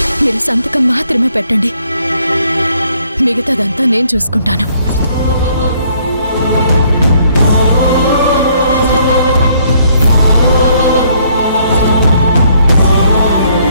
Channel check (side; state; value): both; inverted; correlation -0.66